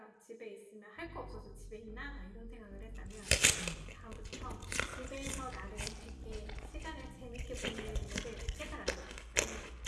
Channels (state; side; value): identical; both; correlation 1.00